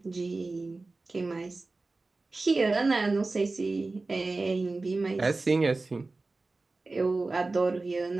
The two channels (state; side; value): quieter; left; 3.5 dB